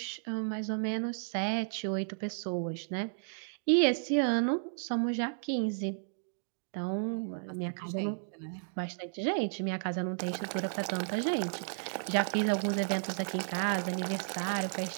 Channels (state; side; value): silent; left; digital silence